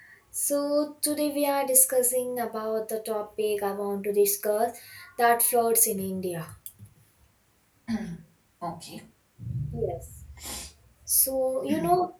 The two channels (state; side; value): identical; both; correlation 1.00